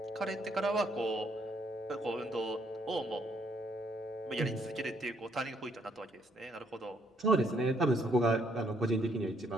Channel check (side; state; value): both; normal; correlation 0.69